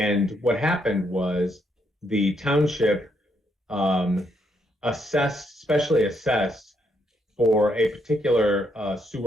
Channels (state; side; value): normal; both; correlation 0.76